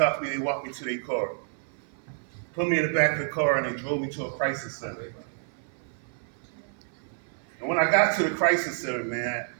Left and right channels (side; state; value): left; silent; 55 dB below the other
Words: me, they walked me to their car. Put me in the back of the car, and they drove me to a crisis center. And when I got to the crisis center, man,